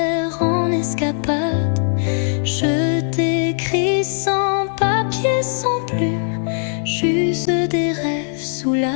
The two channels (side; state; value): right; silent; 63 dB below the other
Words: en escapade. Je t'écris sans papier, sans plume, juste des rêves sous